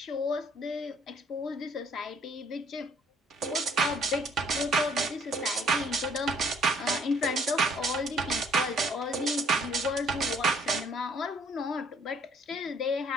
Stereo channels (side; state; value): both; normal; correlation 0.62